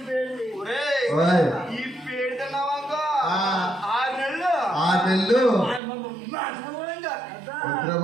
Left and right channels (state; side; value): drops out; left; at 5.8 s